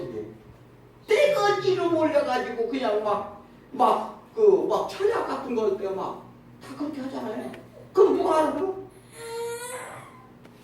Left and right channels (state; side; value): identical; both; correlation 1.00